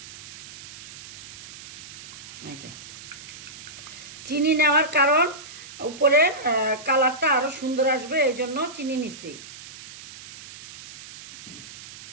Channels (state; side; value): noise; right; hiss, 15 dB below the sound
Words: এই যে চিনি নেওয়ার কারণ উপরের কালারটা আরো সুন্দর আসবে, এই জন্য চিনি নিছি।